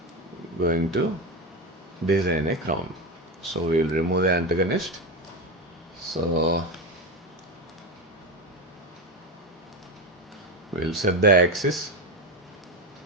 design a crown. So we will remove the antagonist. So we'll set the axis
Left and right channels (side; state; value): both; normal; correlation 0.17